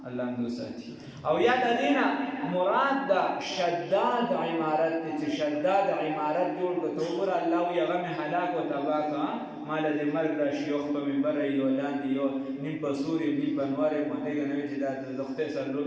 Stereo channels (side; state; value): both; identical; correlation 1.00